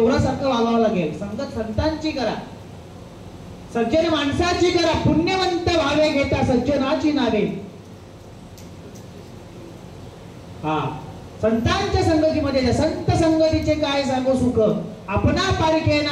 वागावं लागेल. संगत संतांची करा, सज्जन माणसाची करा, पुण्यवंत भावे घेता सज्जनाची नावे. हा, संतांच्या संगतीमध्ये, संत संगतीचे काय सांगू सुख, आपणा पारखे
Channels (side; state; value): both; identical; correlation 1.00